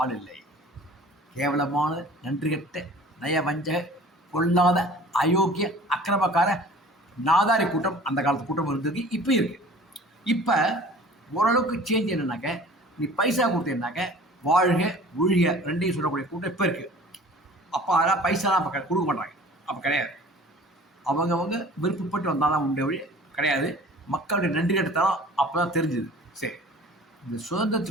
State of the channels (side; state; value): both; normal; correlation 0.45